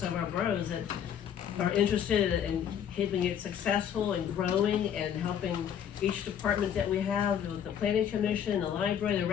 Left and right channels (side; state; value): right; quieter; 8.9 dB